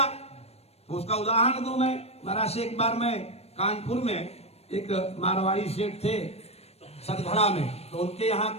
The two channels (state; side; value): late; right; 0.30 ms